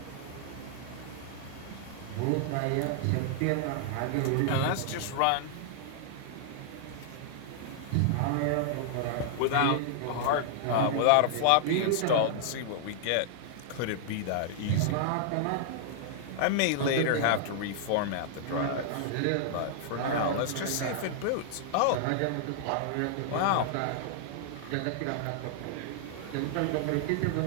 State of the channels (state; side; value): different; both; correlation -0.01